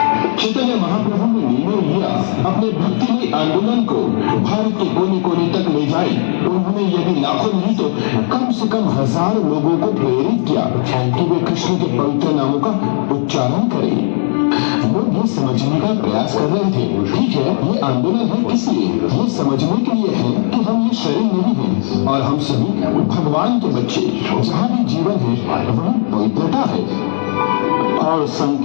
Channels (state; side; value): silent; right; digital silence